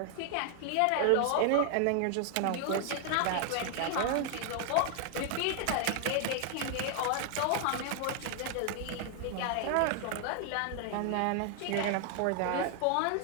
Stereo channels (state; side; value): different; both; correlation 0.00